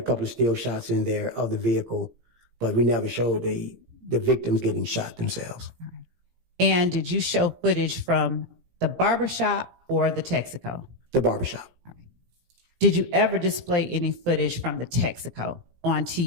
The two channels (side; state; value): left; late; 17 ms